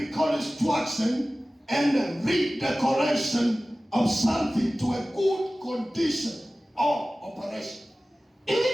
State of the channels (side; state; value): both; normal; correlation 0.97